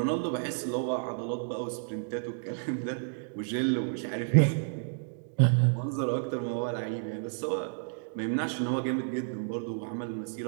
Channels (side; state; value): left; silent; digital silence